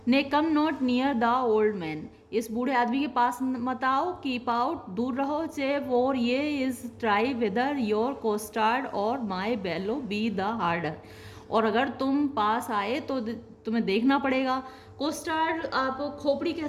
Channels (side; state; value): both; identical; correlation 1.00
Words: ने come not near the old man, इस बूढ़े आदमी के पास मत आओ, कीप आउट, दूर रहो, चे और ये इज़ ट्राई वेदर योर कोस्टार्ड और माई बेलो बी द हार्डर, और अगर तुम पास आए तो तुम्हें देखना पड़ेगा। कोस्टार्ड आप खोपड़ी कह